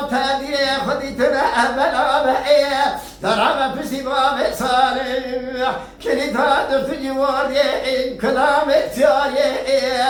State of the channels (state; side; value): identical; both; correlation 1.00